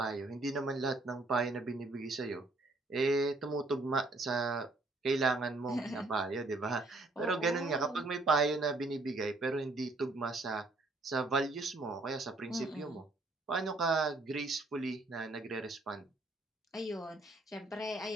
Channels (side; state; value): left; quieter; 3.0 dB